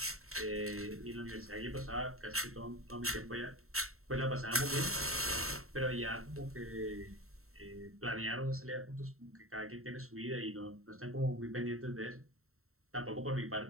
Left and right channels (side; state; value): left; late; 0.63 ms